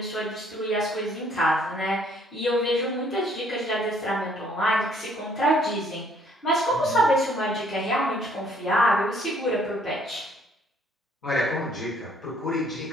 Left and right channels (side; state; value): both; normal; correlation 0.63